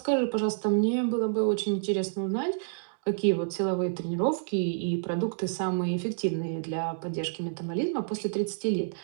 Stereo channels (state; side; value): silent; left; digital silence